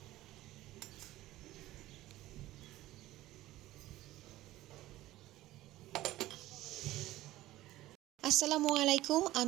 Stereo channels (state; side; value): quieter; left; 16.0 dB